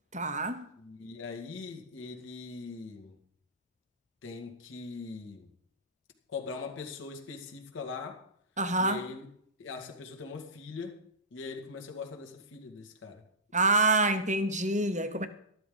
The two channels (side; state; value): both; normal; correlation -0.17